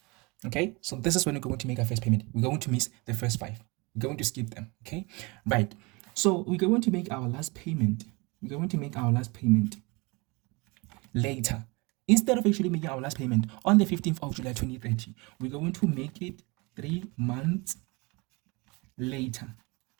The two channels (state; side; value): quieter; left; 26.6 dB